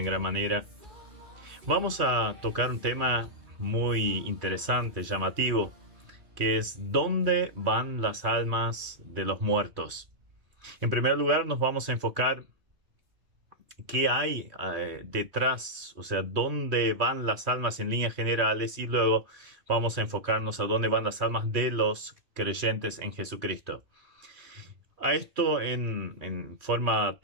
gran manera. Vamos a tocar un tema muy interesante, llamativo, que es ¿dónde van las almas de los muertos? En primer lugar nos vamos a enfocar qué hay detrás, o sea, dónde van las almas en líneas generales, y luego vamos a enfocarnos a dónde van las almas de los creyentes en Jesucristo. A esto en forma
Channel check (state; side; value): late; left; 2.4 ms